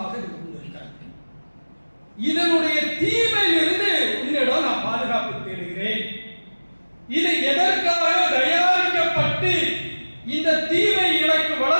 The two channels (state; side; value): inverted; both; correlation -1.00